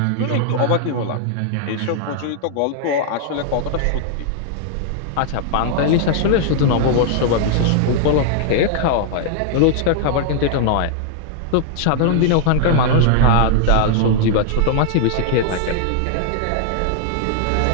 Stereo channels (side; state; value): both; different; correlation 0.00